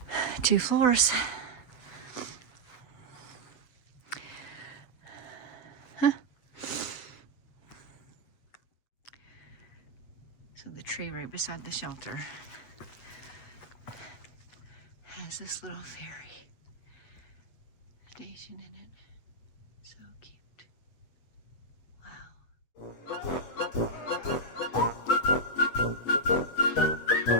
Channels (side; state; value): right; late; 8.1 ms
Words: 2 floors. Huh. So the tree right beside the shelter has this little ferry station in it. So cute. Wow.